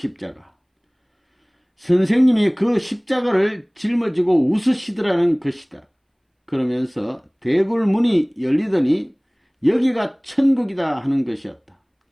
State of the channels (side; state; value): both; identical; correlation 1.00